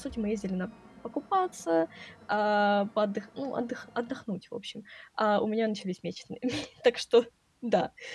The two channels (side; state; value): both; identical; correlation 1.00